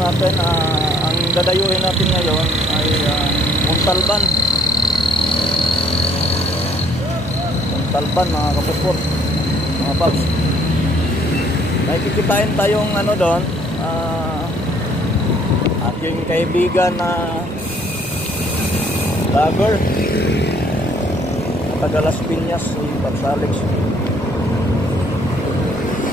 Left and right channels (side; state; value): both; normal; correlation 0.61